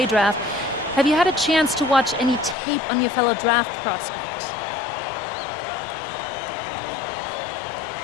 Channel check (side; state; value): right; drops out; at 2.6 s